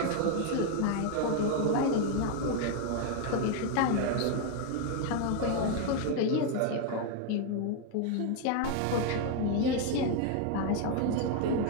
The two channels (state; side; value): different; both; correlation 0.01